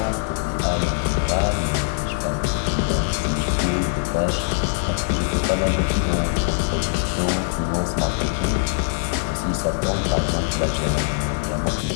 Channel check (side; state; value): right; silent; 64 dB below the other